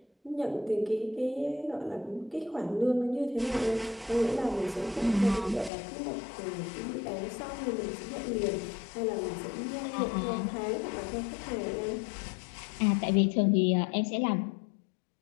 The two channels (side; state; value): right; drops out; at 5.7 s